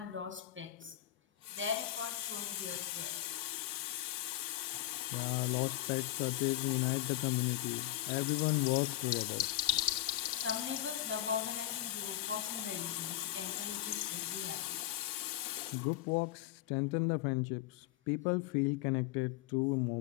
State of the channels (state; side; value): quieter; right; 14.8 dB